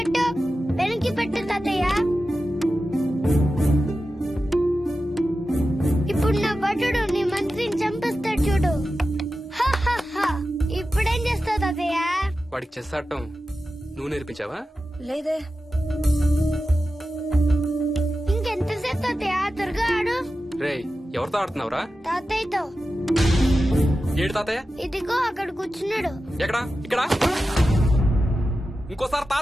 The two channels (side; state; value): both; normal; correlation 0.93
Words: వెనక్కి పెట్టు తాతయ్య. ఇప్పుడు నా భటుడు నీ మంత్రిని చంపేస్తాడు చూడు. ఇప్పుడేం చేస్తావు తాతయ్య? వాడికి చెస్ ఆడటం నువ్వు నేర్పించావా? లేదే. ఇంకెంతసేపు తాతయ్య? త్వరగా ఆడు. రేయ్, ఎవరితో ఆడుతున్నావురా? తాతయ్యతో. ఏడు తాతయ్య? ఇదిగో అక్కడ కూర్చున్నాడు. ఎక్కడా? ఇక్కడ. ఇంకోసారి